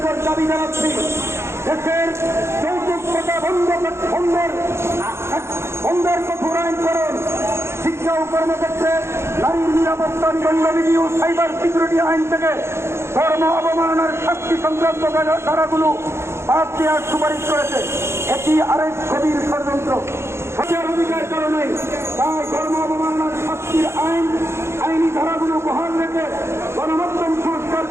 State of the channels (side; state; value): left; late; 0.13 ms